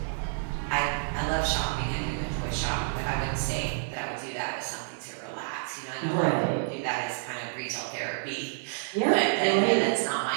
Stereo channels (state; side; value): silent; left; 59 dB below the other